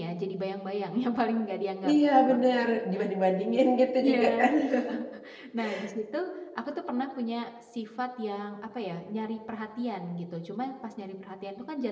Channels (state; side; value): identical; both; correlation 1.00